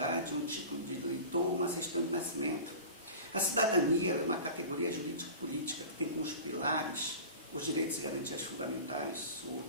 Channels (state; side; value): inverted; both; correlation -0.36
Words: um título de eleitor, uma certidão de nascimento. A cidadania é uma categoria jurídico-política que tem como pilares os direitos e garantias fundamentais, os